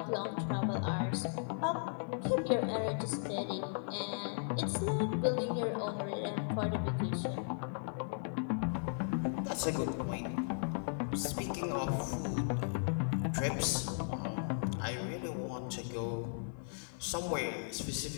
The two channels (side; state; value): right; silent; 53 dB below the other